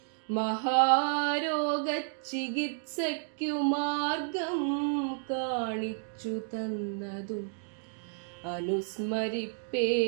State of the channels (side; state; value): left; silent; 57 dB below the other